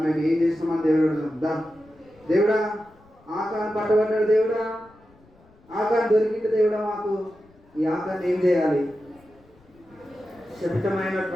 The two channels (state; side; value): noise; left; rumble, 29 dB below the sound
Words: మేము ఏం చేస్తున్నామని దేవుడు అడుగుదాం. దేవుడా, ఆకాన్ని పట్టబడ్డాడు. దేవుడా, ఆకాన్ని దొరికింది. దేవుడా, మాకు ఈ ఆకాన్ని ఏం చేయాలి?